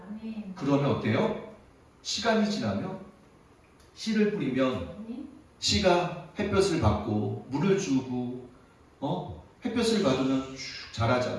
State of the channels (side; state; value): both; identical; correlation 1.00